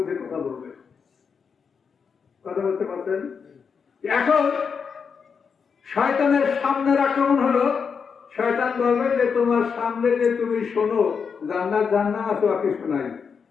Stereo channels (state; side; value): quieter; right; 6.1 dB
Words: কথা বলবে। কথা বলতে পারছেন? এখন শয়তানের সামনের আক্রমণ হলো, শয়তান বলবে যে তোমার সামনে যে তুমি শোনো জান্নাত জাহান্নাম আছে, কিছু নাই।